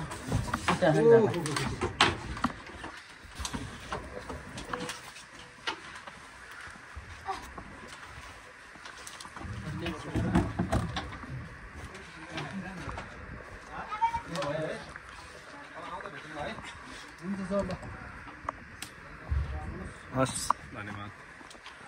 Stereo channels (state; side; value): identical; both; correlation 1.00